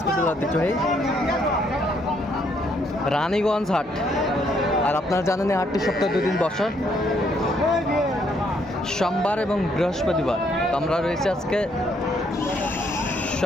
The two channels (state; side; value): normal; both; correlation 0.70